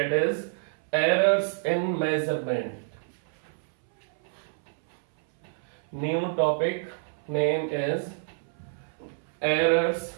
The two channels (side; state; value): left; silent; 59 dB below the other